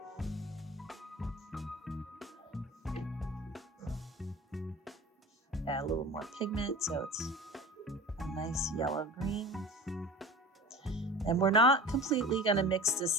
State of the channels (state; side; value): normal; both; correlation 0.37